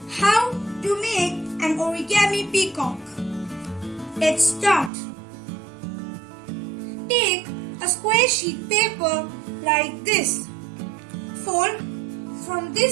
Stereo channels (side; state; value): left; drops out; at 4.9 s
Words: how to make an origami peacock. Let's start. Take a square sheet paper like this. Fold from